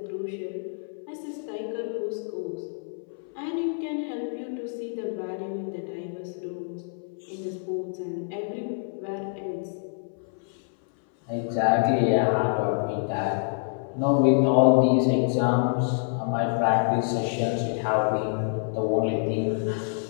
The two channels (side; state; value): right; silent; 60 dB below the other